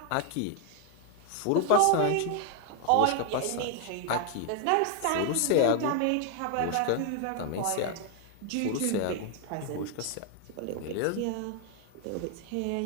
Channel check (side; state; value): both; different; correlation 0.00